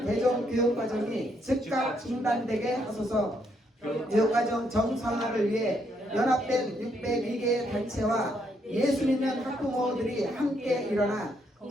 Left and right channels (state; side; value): normal; both; correlation 0.74